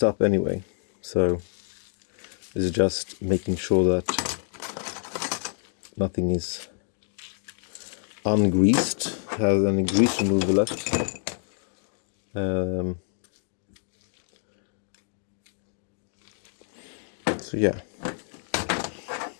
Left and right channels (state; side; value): silent; right; 60 dB below the other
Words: up anyway, so this is just making sure that nothing is ungreased, has any grease remover left. So yeah,